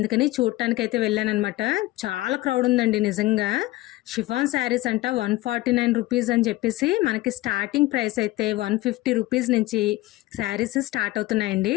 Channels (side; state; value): right; quieter; 18.2 dB